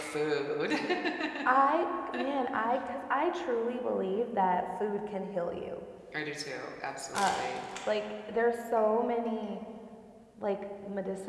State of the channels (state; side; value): identical; both; correlation 1.00